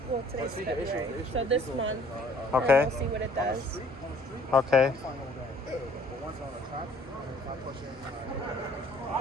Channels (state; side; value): normal; both; correlation 0.57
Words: Well, today's February, so this month. Okay. And we'll see what it does. Okay. But once on the track, if I push in